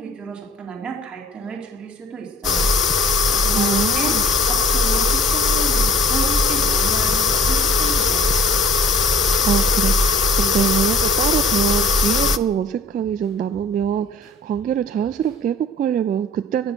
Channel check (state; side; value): normal; both; correlation 0.50